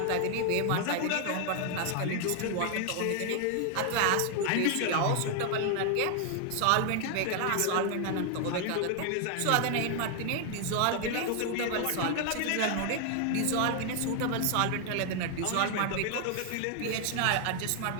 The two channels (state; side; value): different; both; correlation 0.00